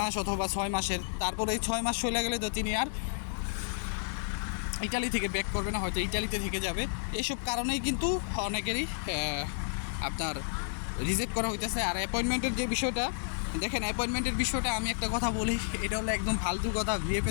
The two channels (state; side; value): silent; right; digital silence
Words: অথবা 6 মাসের। তারপরে এই 6 মাস চলে গেলে তো তিনি আর ইটালি থেকে ব্যাক করবে না, হয়তো ইটালিতে থেকে যাবে। এইসব কারণেই কিন্তু অনেকেরই আপনার রিজেক্ট করা হইতেছে। আর অ্যাপয়েন্টমেন্টের যে বিষয়টা দেখেন, অ্যাপয়েন্টমেন্টের বিষয়টা আমি একটা কথা বলি, এটা হলো একদম ফালতু কথা।